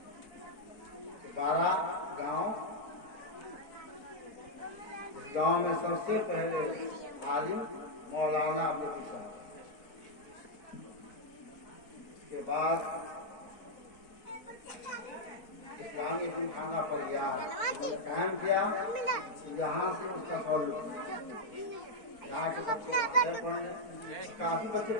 12 गांव, इस गांव में सबसे पहले आलिम मौलाना अब्दुल हसन, इसके बाद इस्लामी यतीमखाना पर कायम किया। यहाँ से उसका सॉल्व, यहाँ के बच्चे पढ़े, काफी बच्चे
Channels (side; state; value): right; late; 4.5 ms